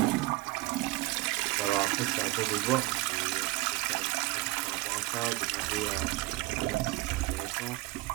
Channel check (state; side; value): quieter; left; 19.7 dB